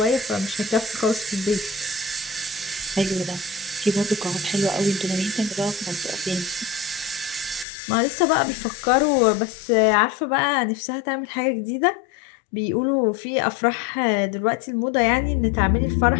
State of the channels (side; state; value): right; drops out; at 7.7 s